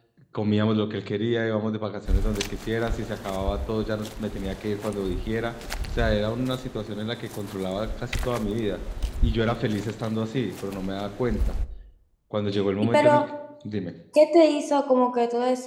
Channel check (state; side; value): identical; both; correlation 1.00